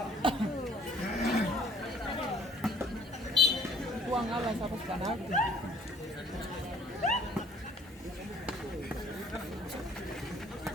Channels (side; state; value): both; normal; correlation 0.56